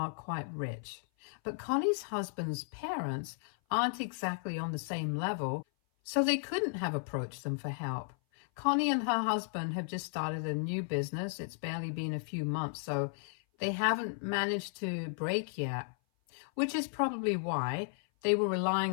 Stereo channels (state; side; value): silent; right; 55 dB below the other